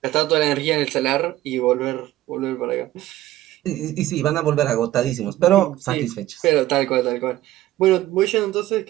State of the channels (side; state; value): left; quieter; 14.9 dB